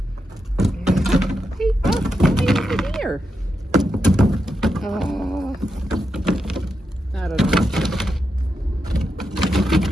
Hey, over here. I don't know.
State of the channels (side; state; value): both; normal; correlation 0.86